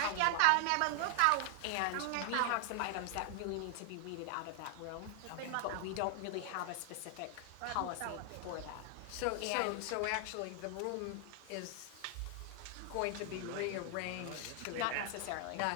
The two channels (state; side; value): different; both; correlation 0.00